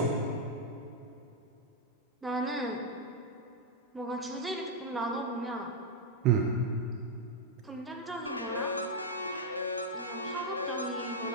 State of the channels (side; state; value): both; normal; correlation -0.02